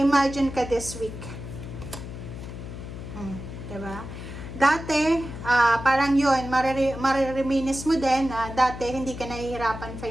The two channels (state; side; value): noise; left; hum, 10 dB below the sound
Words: ka this week. Diba? Dati, parang yun, marereminis mo din na dati hindi ka nahihirapan